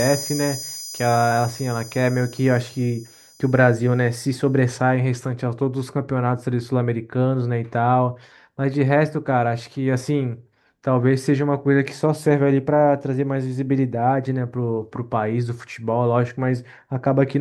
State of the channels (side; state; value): both; identical; correlation 1.00